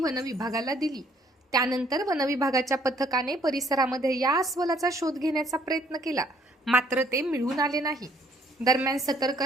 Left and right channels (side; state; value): both; normal; correlation 0.63